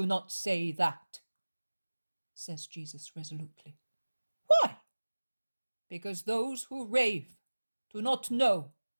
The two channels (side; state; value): both; inverted; correlation -1.00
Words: not say that,'" says Jesus resolutely. "Why? Because those who rave do not know